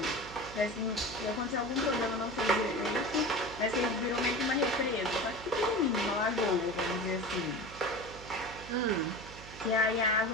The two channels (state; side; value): noise; right; hum, 15 dB below the sound